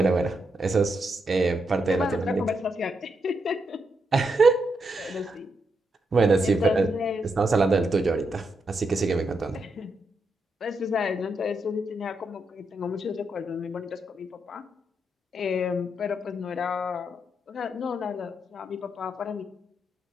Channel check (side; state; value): both; normal; correlation 0.82